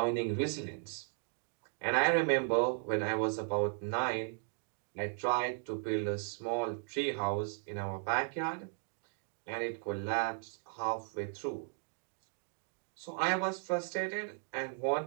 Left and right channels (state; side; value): silent; left; 54 dB below the other